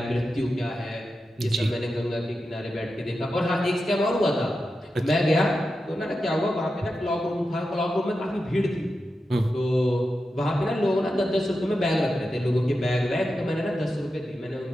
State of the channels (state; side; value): normal; both; correlation 0.90